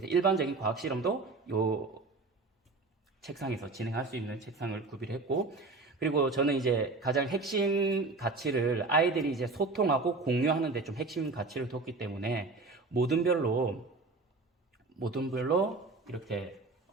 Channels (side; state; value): left; quieter; 3.7 dB